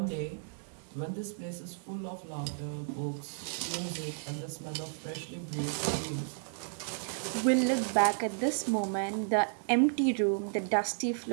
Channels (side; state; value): left; silent; digital silence